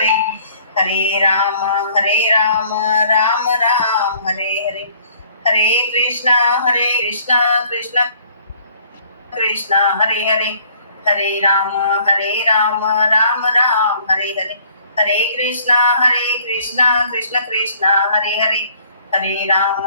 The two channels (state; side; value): inverted; both; correlation -0.59